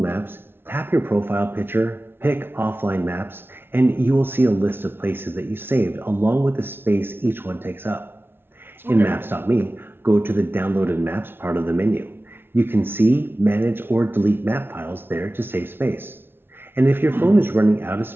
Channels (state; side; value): late; left; 0.11 ms